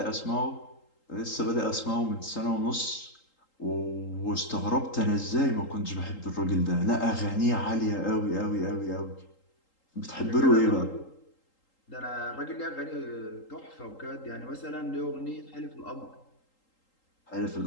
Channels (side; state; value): right; late; 3.8 ms